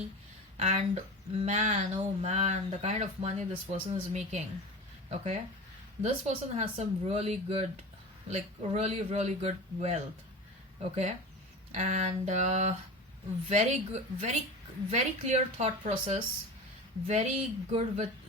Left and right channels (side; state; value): both; normal; correlation 0.31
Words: And man, oh man, the kind of money this person is making. Okay, this person has some really good, like really good wealth. Okay. And very good, very clear thought process, very good with,